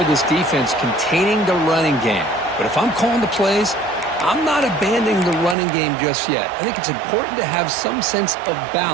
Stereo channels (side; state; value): left; drops out; at 5.6 s